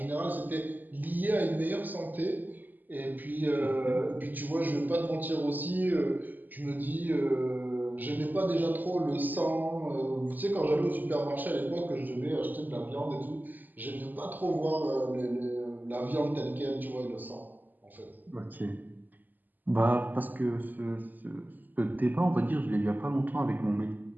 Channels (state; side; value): late; left; 0.086 ms